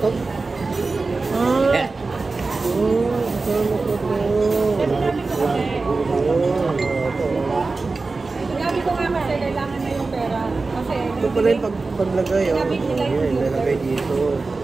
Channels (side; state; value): left; quieter; 3.8 dB